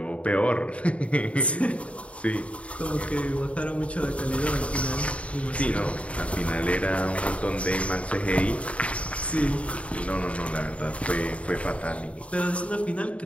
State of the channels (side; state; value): right; late; 0.064 ms